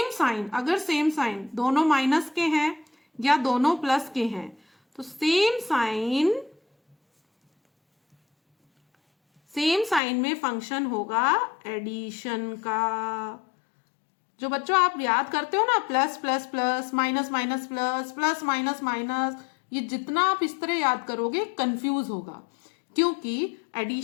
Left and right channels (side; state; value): right; drops out; at 10.0 s